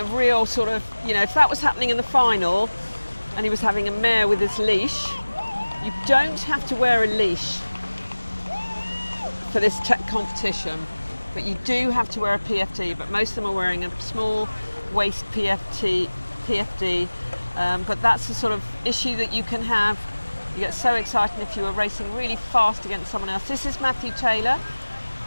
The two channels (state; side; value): inverted; both; correlation -1.00